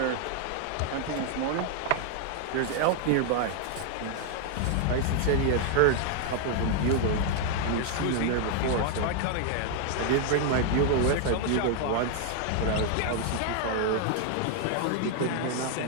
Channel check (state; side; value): different; both; correlation 0.00